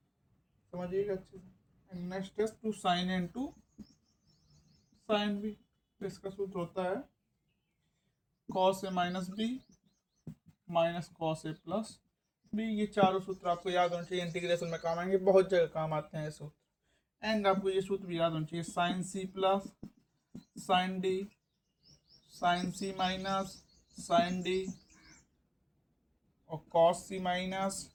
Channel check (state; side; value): identical; both; correlation 1.00